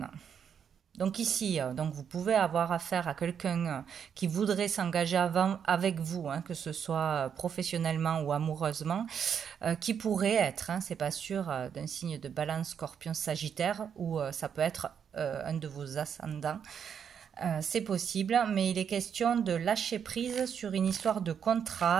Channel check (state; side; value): quieter; left; 7.8 dB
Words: Donc ici, donc vous pouvez avoir affaire à quelqu'un qui voudrait s'engager avec vous, hein, que ce soit professionnellement ou amoureusement, qui pourrait être, hein, c'est pas sûr, d'un signe de Balance, Scorpion, Sagittaire, ou ça peut être un de vos ascendants. C'est possible, mais il est question de lâcher prise sur une histoire de